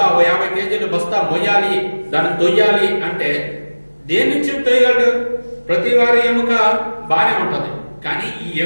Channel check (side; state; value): both; inverted; correlation -1.00